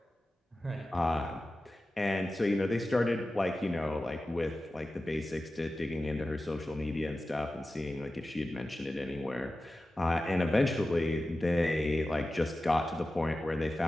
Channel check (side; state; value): both; normal; correlation 0.94